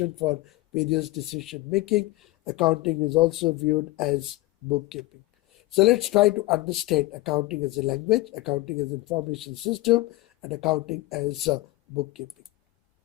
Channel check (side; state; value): right; quieter; 18.7 dB